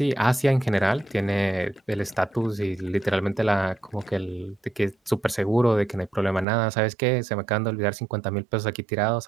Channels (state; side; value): drops out; left; at 6.5 s